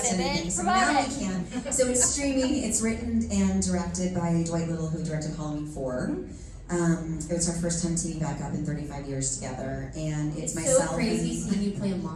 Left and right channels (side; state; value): both; identical; correlation 1.00